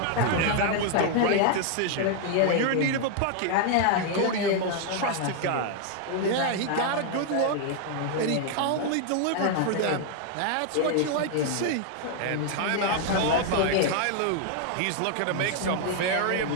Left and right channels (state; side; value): different; both; correlation 0.00